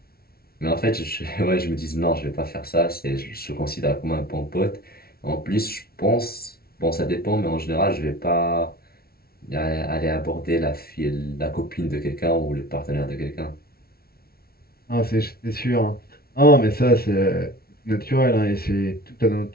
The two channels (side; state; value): right; late; 0.44 ms